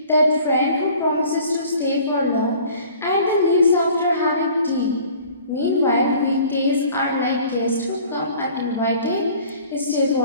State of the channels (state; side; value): inverted; both; correlation -0.49